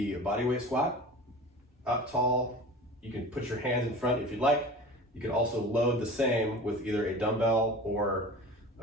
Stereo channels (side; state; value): both; normal; correlation 0.37